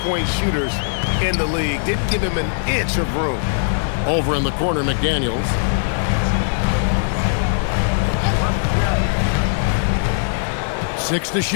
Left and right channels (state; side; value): silent; right; 66 dB below the other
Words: shooters in the league. Didn't give him an inch of room. Over in the corner, McDaniels. Six to